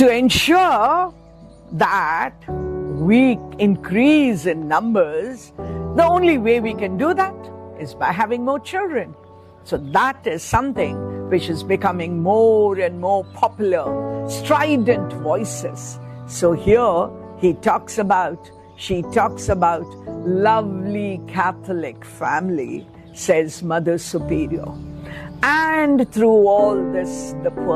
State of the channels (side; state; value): both; identical; correlation 1.00